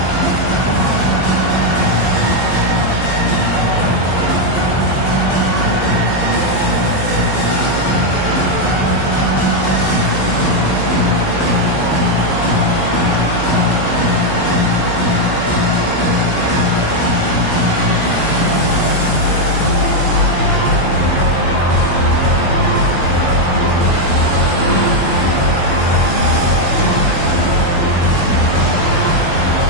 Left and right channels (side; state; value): right; late; 16 ms